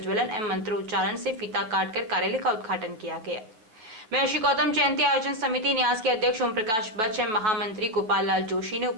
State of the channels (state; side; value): late; left; 9.1 ms